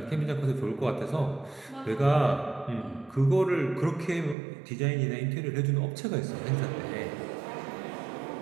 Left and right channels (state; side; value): drops out; left; at 4.4 s